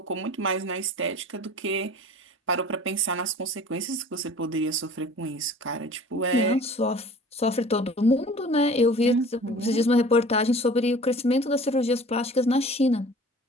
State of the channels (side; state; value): both; normal; correlation 0.45